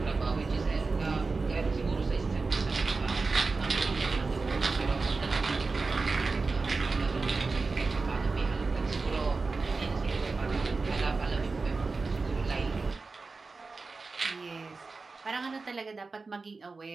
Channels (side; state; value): left; quieter; 4.0 dB